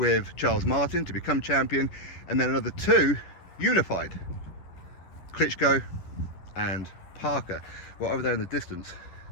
Charles Martin to become champion, and then another 2 unified, Klitschko and Parker. Well, over there in the distance,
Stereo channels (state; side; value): late; right; 11 ms